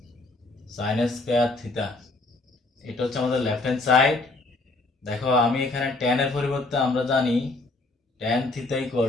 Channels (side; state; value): right; quieter; 3.2 dB